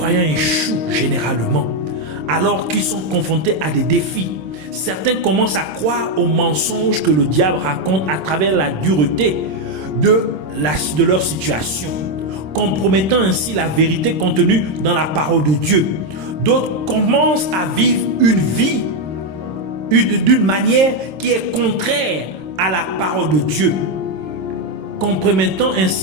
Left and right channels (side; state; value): left; late; 26 ms